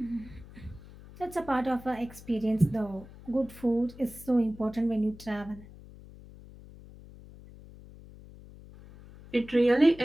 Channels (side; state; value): left; noise; hum, 19 dB below the sound